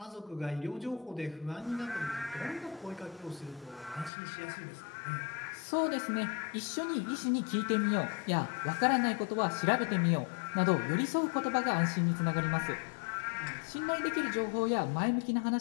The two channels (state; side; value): drops out; right; at 4.1 s